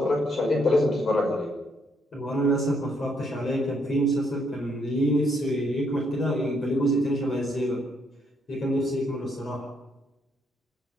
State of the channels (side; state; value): both; normal; correlation 0.73